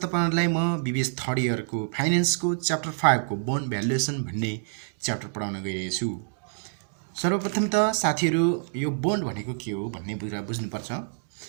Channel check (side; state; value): left; silent; digital silence